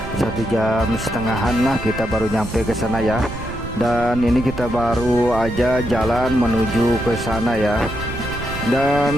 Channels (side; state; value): right; noise; rumble, 10 dB below the sound